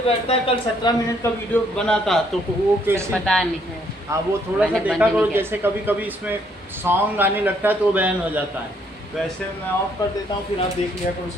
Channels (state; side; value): normal; both; correlation 0.68